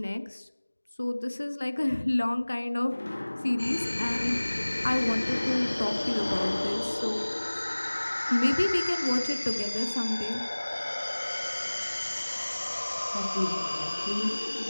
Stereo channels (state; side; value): inverted; both; correlation -1.00